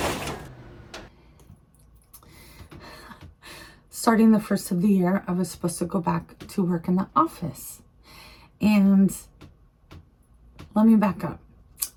Starting the first of the year, I was supposed to go back to work in the office. And let me back up.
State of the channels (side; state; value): both; identical; correlation 1.00